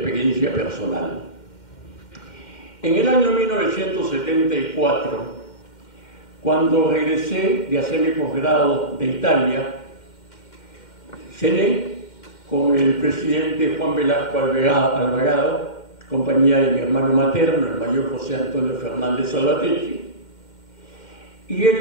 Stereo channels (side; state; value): right; late; 2.1 ms